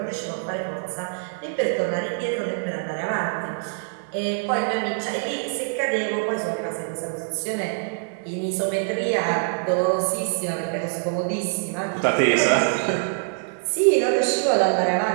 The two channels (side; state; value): left; silent; digital silence